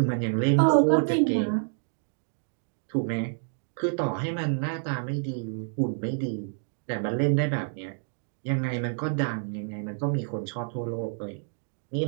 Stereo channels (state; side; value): silent; left; digital silence